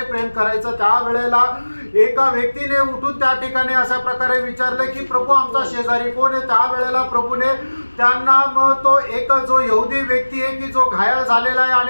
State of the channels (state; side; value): inverted; both; correlation -1.00